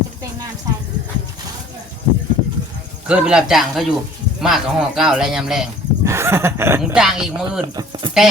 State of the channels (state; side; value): normal; both; correlation 0.50